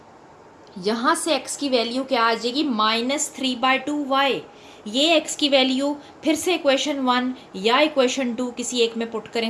यहाँ से x की वैल्यू क्या आ जाएगी, -3/2y। ये x की वैल्यू फिर से इक्वेशन 1 या इक्वेशन 2 किसी एक में पुट करें,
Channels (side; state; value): both; identical; correlation 1.00